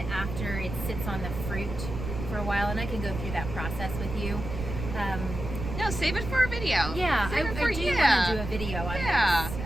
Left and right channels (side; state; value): right; noise; rumble, 7 dB below the sound